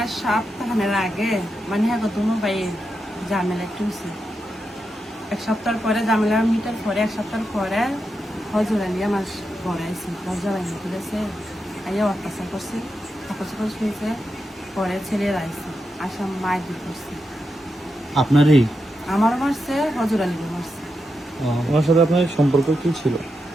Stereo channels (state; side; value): normal; both; correlation 0.86